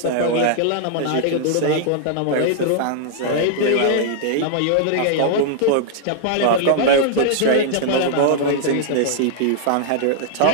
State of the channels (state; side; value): different; both; correlation -0.01